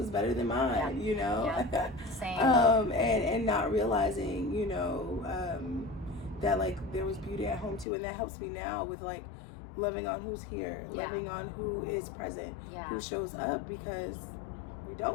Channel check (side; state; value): right; drops out; at 7.9 s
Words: better than mine, you know. Same. And not realizing, you know, that like there was beauty at home too, and that helps me now with like loving on who's here, loving on who is present, who shows up, because we